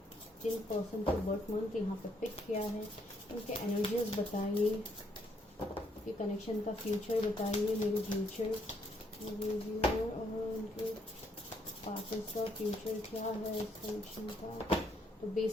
जिन पर्सन को बर्थ मंथ यहाँ पे पिक किया है, उनके एनर्जीज बताइए, कि कनेक्शन का फ्यूचर बताइए, मेरे फ्यूचर और उनके पार्टनर्स का फ्यूचर क्या है इस कनेक्शन का। तो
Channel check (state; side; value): normal; both; correlation 0.71